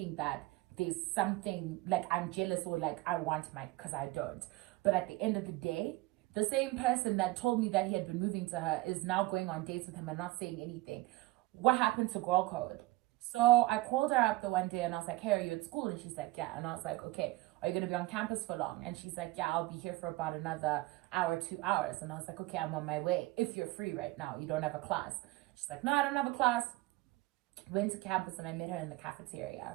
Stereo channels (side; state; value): left; quieter; 19.8 dB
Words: that there's something like I'm jealous or like I want Mike, because I don't. But at the end of the day, the same person that told me that he had been moving to her is now going on dates with him and not saying anything. What happened to girl code? So I called her up the one day and I was like, hey, are you at school? And she's like, yeah. And I was like, okay, are you going to be on campus for long? And she's like, yeah, I'll be here for about another hour, 2 hours. And I was like, okay, I'm on my way. If you're free right now, you don't have a class. She's like, no, I don't have a class. Went to campus and I met her in the